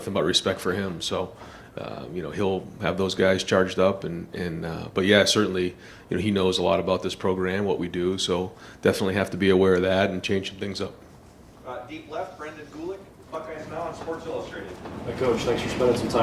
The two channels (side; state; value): both; identical; correlation 1.00